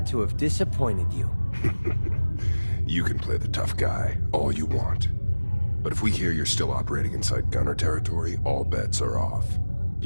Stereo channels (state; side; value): inverted; both; correlation -1.00